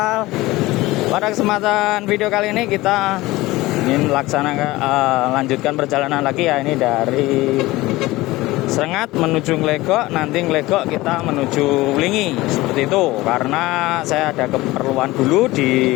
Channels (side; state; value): right; quieter; 19.2 dB